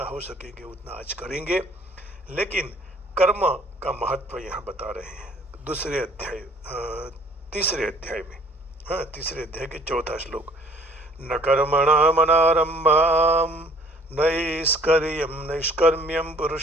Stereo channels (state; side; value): normal; both; correlation 0.57